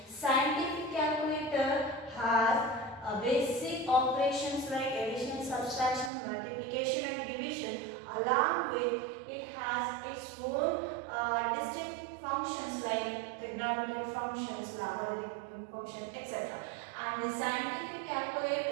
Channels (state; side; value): drops out; left; at 6.1 s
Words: Scientific calculator has basic operations like addition, subtraction, multiplication and division. Along with it has its own distinct functions like trigonometric functions, logarithmic function, etc. And the scientific